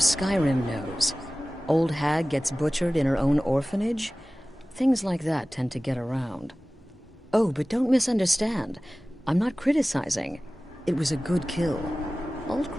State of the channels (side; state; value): both; normal; correlation 0.97